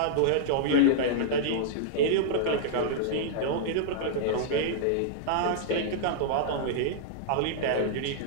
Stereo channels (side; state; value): both; different; correlation -0.02